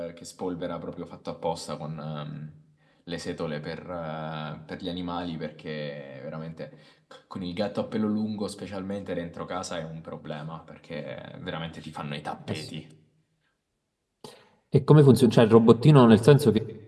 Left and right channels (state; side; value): identical; both; correlation 1.00